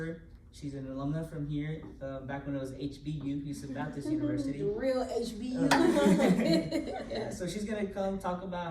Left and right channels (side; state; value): both; identical; correlation 1.00